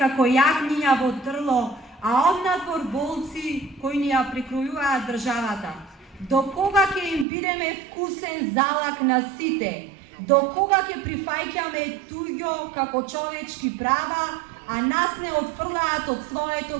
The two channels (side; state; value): left; drops out; at 7.2 s